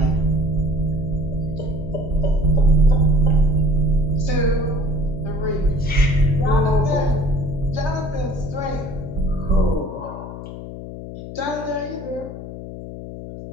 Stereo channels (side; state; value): left; noise; hum, 11 dB below the sound